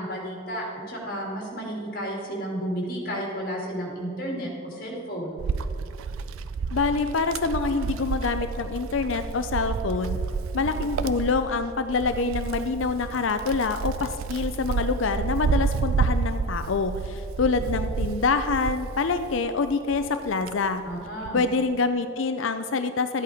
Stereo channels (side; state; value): both; normal; correlation 0.17